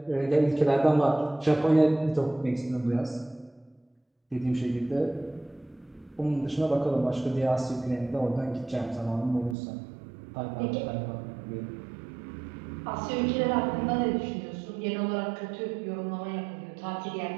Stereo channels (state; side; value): drops out; left; at 9.6 s